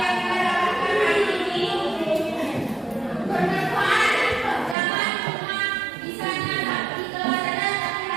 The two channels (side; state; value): left; drops out; at 4.8 s